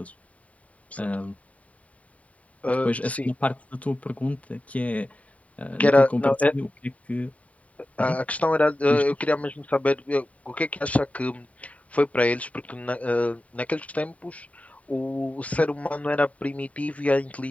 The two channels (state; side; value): late; right; 0.068 ms